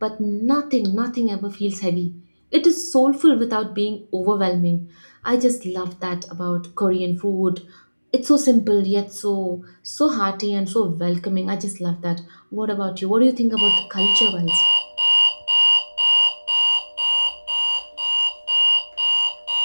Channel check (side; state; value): both; inverted; correlation -1.00